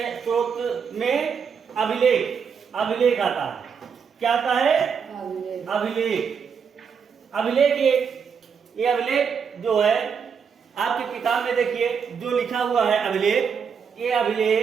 में अभिलेख आता है। क्या आता है? अभिलेख ये अभिलेख जो है आपकी किताब में देखिए जो लिखा हुआ है अभिलेख, ये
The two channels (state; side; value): quieter; left; 6.5 dB